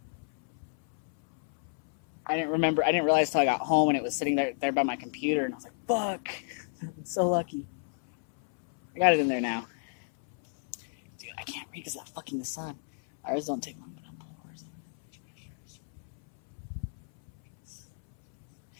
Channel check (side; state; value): right; silent; 57 dB below the other